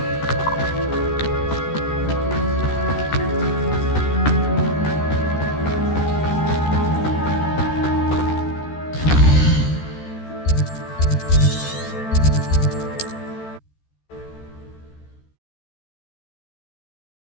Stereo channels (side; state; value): right; late; 13 ms